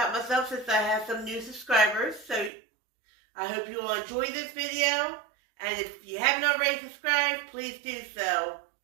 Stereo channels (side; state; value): left; drops out; at 2.5 s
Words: myself since I have some new subscribers. So I hope you all enjoy this video, and if you haven't already subscribed, please do so.